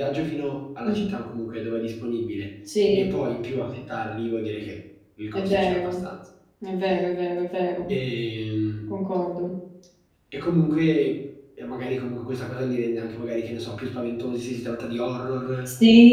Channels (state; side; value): identical; both; correlation 1.00